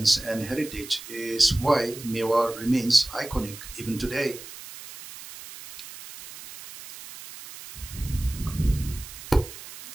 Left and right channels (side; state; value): right; noise; hiss, 14 dB below the sound